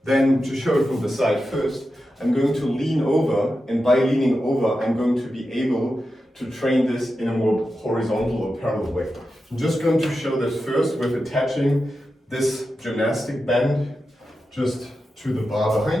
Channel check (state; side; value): normal; both; correlation 0.90